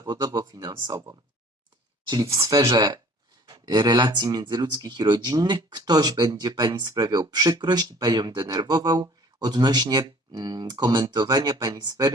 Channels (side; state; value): both; normal; correlation 0.51